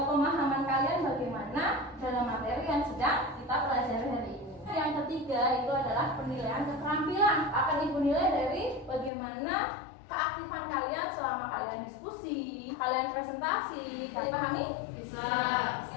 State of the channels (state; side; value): drops out; right; at 9.1 s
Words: kalian bagaimana dalam materi yang sedang kita pelajari hari ini. Yang ketiga itu adalah penilaian keterampilan. Akan Ibu nilai dari bagaimana keaktifan kalian selama kalian diskusi, kalian presentasi. Kalian pahami? Bisa. Bisa,